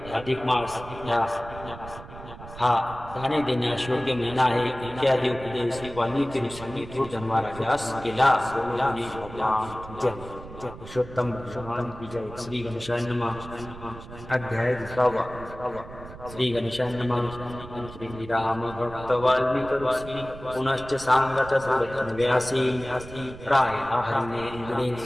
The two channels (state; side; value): noise; right; rumble, 15 dB below the sound